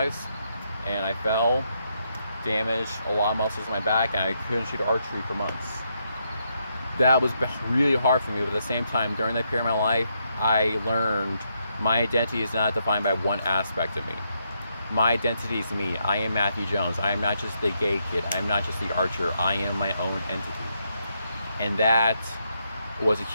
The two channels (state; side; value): inverted; both; correlation -0.79